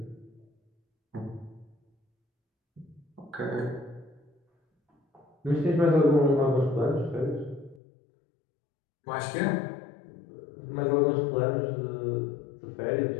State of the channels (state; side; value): drops out; right; at 7.8 s